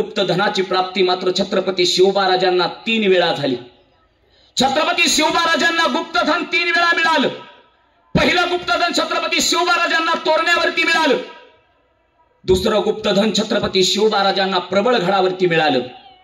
प्राप्ती मात्र छत्रपती शिवबा राजांना 3 वेळा झाली. छत्रपती शिवबा राजांना गुप्तधन 3 वेळा मिळालं. पहिलं गुप्तधन छत्रपती शिवबा राजांना तोरण्यावरती मिळालं. दुसरं गुप्तधन छत्रपती शिवबा राजांना प्रबळगडावरती मिळालं.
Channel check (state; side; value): identical; both; correlation 1.00